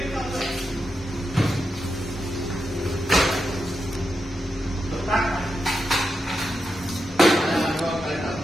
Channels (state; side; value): normal; both; correlation 0.87